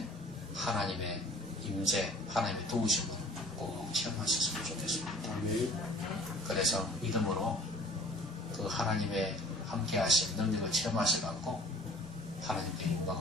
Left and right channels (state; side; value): normal; both; correlation 0.49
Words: 하나님의 임재, 하나님의 도우심을 꼭 체험하셨으면 좋겠습니다. 그래서 믿음으로 그 하나님의 함께하신 능력을 체험하셔갖고 하나님께